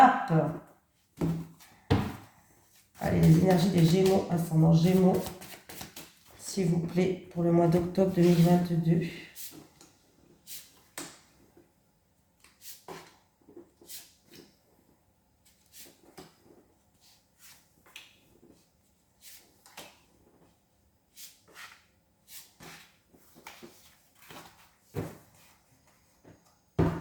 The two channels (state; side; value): identical; both; correlation 1.00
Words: Allez, les énergies des Gémeaux, ascendant Gémeaux, s'il vous plaît, pour le mois d'octobre 2022.